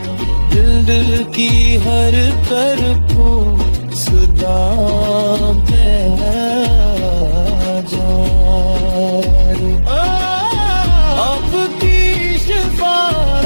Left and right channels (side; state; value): both; inverted; correlation -1.00